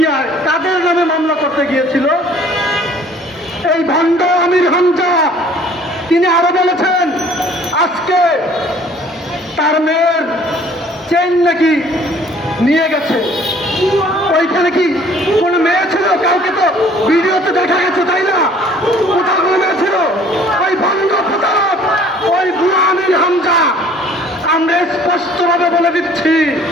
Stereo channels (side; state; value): both; normal; correlation 0.54